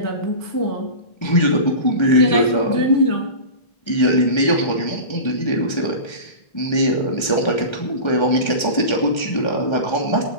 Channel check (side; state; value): right; late; 1.3 ms